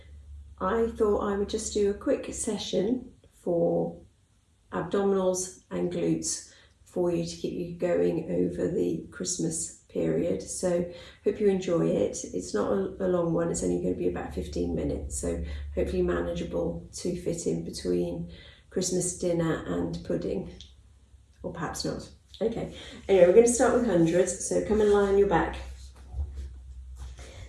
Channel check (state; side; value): identical; both; correlation 1.00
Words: I thought I would just do a quick session for abdominals and glutes for you to keep you going over the Christmas period. So hope you enjoy it. It's not a long one, it's only going to be about 15 minutes, so hopefully manageable to fit in between Christmas dinner and pudding, or perhaps not. Okay, anyway, we're going to start with hundreds, so come and lie on your back.